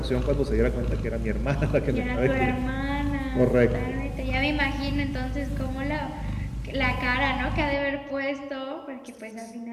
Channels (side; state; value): both; identical; correlation 1.00